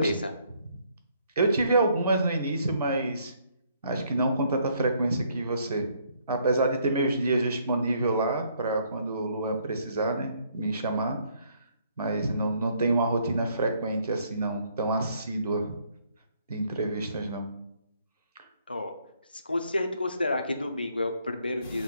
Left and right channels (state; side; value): inverted; both; correlation -0.68